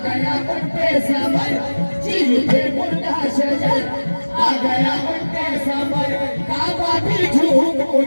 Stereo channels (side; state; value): both; inverted; correlation -1.00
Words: गया उनके समर, चीखे मुर्दा शजर आ गया उनके समर। काबा भी झूम